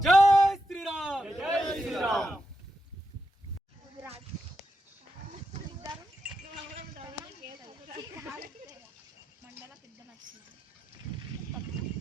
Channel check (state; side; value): normal; both; correlation 0.85